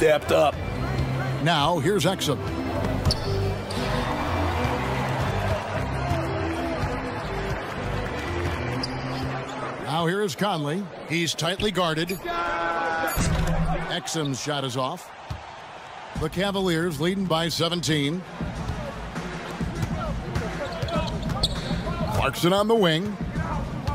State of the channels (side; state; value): both; identical; correlation 1.00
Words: up. Now, here's Exum. Now here is Conley. He's tightly guarded. Exum's shot is off. The Cavaliers leading by 17. Clarkson on the wing.